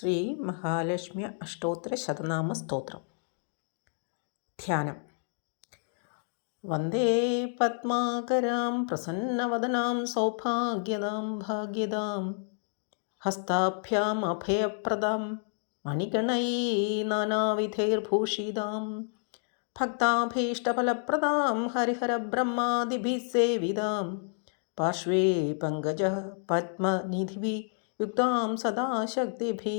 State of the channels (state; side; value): silent; right; 58 dB below the other